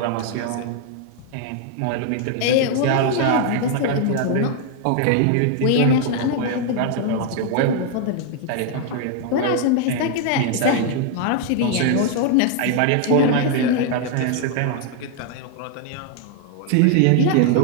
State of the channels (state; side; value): different; both; correlation 0.00